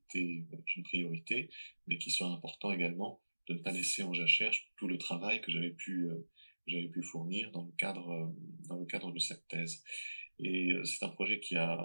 une priorité, mais qu'il serait important également de ne pas laisser en jachère tout le travail que j'avais pu fournir dans le cadre de cette thèse. Et c'est un projet qui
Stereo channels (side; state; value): both; inverted; correlation -1.00